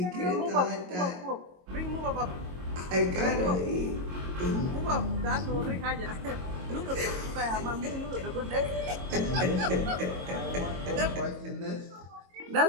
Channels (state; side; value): late; left; 22 ms